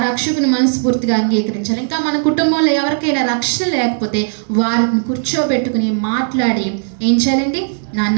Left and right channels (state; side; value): silent; left; 69 dB below the other